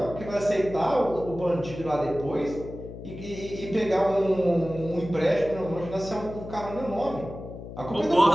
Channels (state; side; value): noise; left; hum, 12 dB below the sound